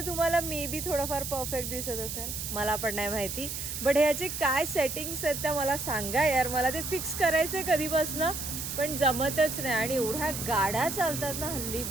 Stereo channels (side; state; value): right; noise; hiss, 5 dB below the sound